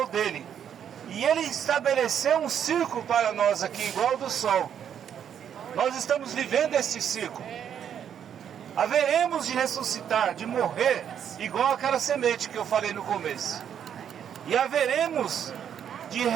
E Ele estabeleceu um círculo para nós aqui, igual ao do sol. Nós estamos vivendo esse ciclo. Haveremos de ressuscitar, de morrer, igual aquela semente que eu falei no começo. E haveremos de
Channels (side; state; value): left; quieter; 8.8 dB